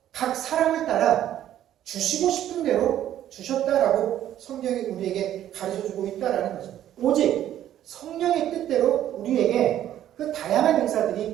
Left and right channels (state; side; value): quieter; left; 11.7 dB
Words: 각 사람을 따라 주시고 싶은 대로 주셨다라고 성경이 우리에게 가르쳐주고 있다라는 거죠. 오직 성령의 뜻대로 우리에게 그 다양한